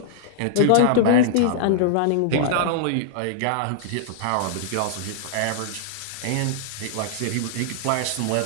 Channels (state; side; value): different; both; correlation -0.01